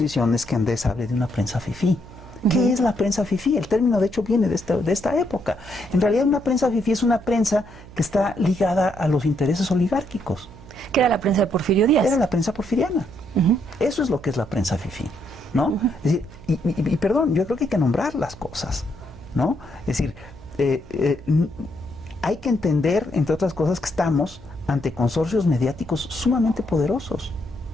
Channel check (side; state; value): right; noise; hum, 19 dB below the sound